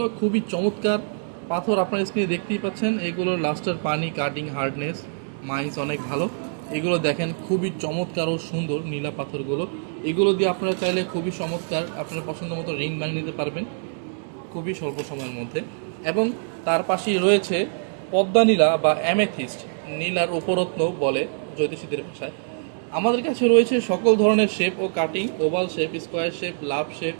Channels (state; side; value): silent; left; digital silence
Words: খুবই চমৎকার পাথর, আপনার স্ক্রিনে দেখতেই পাচ্ছেন। এইগুলোর লাস্টের পানি, কাটিং, হার্ডনেস, মাইন্স অনেক ভালো। এগুলো দেখেন খুবই চমৎকার ও সুন্দর নীলা পাথরগুলো। এগুলো দিয়ে আপনারা চাইলে খুবই চমৎকার আপনার পছন্দ মতো রিং বানিয়ে নিতে পারবেন খুবই স্বল্প সময়ের মধ্যে। এবং তার পাশেই রয়েছে পদ্মা নীলা বা অ্যামেথিস্ট, নীলার উপরত্ন বলে জ্যোতিষীদের ভাষায়। আমাদের কাছে রয়েছে সকল ধরনের শেপ ও cutting, oval shape, square shape, love shape